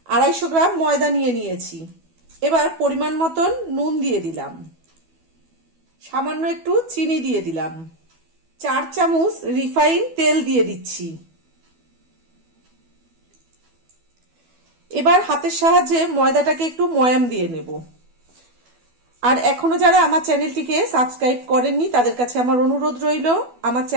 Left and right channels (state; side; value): late; left; 12 ms